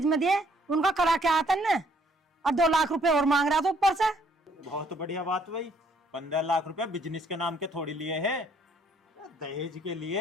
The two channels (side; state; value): both; normal; correlation 0.65